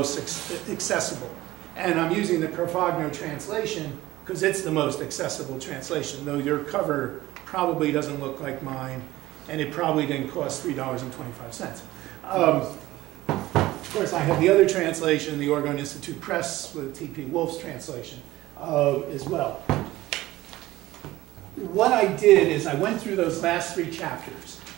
accessible. And I'm using the Carfagno translation because it's the most accessible translation, though your cover probably doesn't look like mine, and it probably didn't cost $3.25. Of course, I have the other translation, the Oregon Institute Press with T.P. Wolf's translation as well. What I did is I went through those last 3 chapters,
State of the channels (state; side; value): quieter; left; 17.0 dB